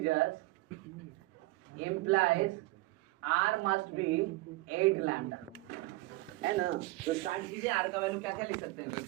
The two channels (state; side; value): quieter; left; 21.1 dB